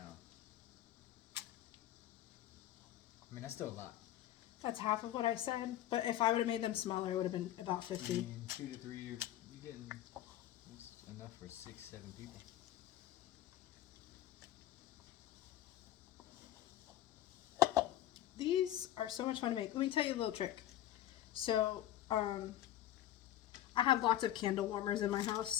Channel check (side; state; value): right; quieter; 12.8 dB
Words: I mean, that's still a lot. That's half of what I said, but if I would have made them smaller, it would have been about 50. I mean, 2 to 3, you're getting that's enough for 6, 7 people. these are so much fun to make. Let me tell you a little trick. So, I have lots of candle warmers in my